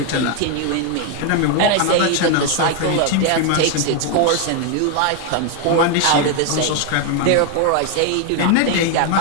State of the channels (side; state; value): both; different; correlation 0.01